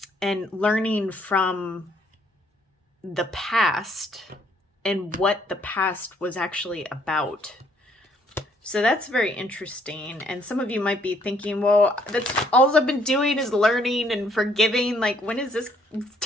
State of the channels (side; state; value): both; normal; correlation 0.66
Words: learning from the past and what the past was actually about. So that's very interesting. And some of you might be thinking, well, that's all I've been doing is learning and forgiving. Like, when is this